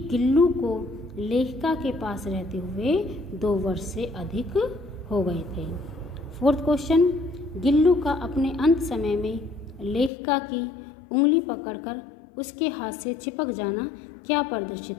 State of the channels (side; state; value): right; drops out; at 10.1 s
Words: गिल्लू को लेखिका के पास रहते हुए 2 वर्ष से अधिक हो गए थे। 4th क्वेश्चन, गिल्लू का अपने अंत समय में लेखिका की उंगली पकड़कर उसके हाथ से चिपक जाना क्या